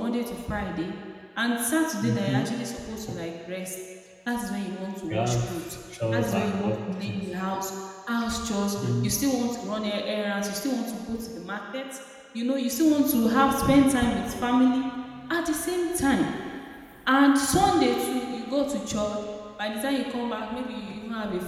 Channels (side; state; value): both; identical; correlation 1.00